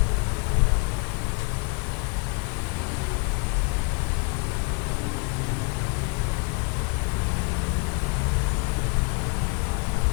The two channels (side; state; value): right; quieter; 33.9 dB